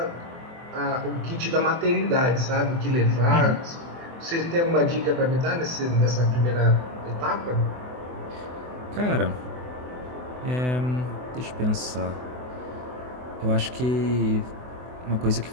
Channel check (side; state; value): left; late; 24 ms